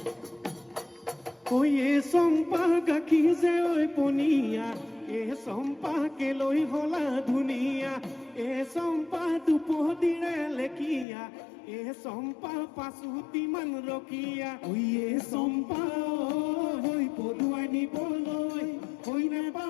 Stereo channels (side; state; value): right; drops out; at 11.1 s